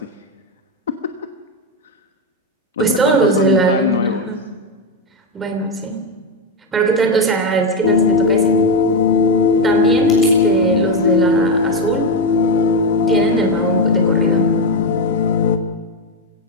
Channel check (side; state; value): both; normal; correlation 0.07